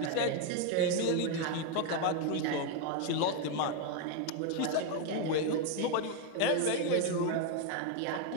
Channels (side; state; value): both; different; correlation 0.01